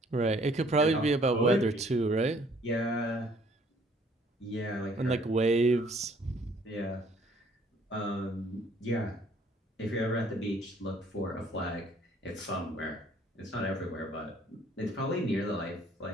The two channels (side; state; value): both; normal; correlation 0.60